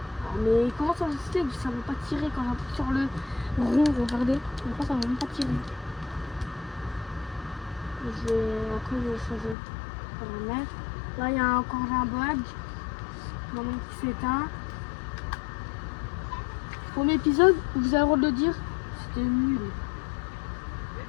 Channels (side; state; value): right; drops out; at 9.6 s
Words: Mais comment ça se fait que ça ne veut pas tirer quand j'appuie sur le rond, regardez. Pourquoi ça ne veut même pas tirer? Après je vais changer de paramètre. Là il y a encore un bug. Dans mon qui s'éteint. Premier épisode, vous avez le droit de le dire, c'était nul.